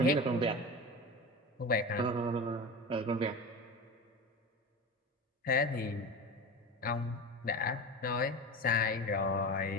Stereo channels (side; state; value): both; normal; correlation 0.28